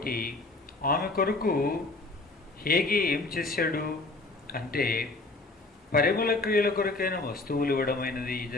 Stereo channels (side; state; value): right; quieter; 3.2 dB